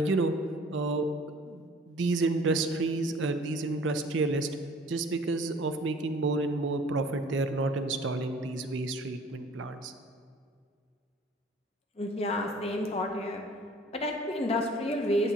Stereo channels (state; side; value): normal; both; correlation 0.51